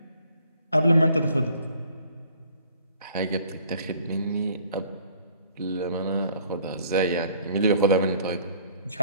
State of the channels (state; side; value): inverted; both; correlation -0.57